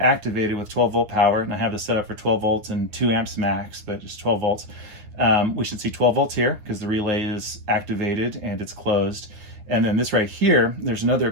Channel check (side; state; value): left; late; 9.8 ms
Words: with 12 volt power, and I have this set up for 12 volts and 2 amps max, but just 12 volts, we should see 12 volts here because the relay is activated and it's closed. And then this right here, there's another